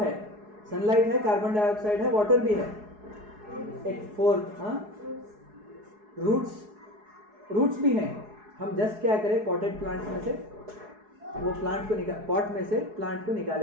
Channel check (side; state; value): left; late; 4.7 ms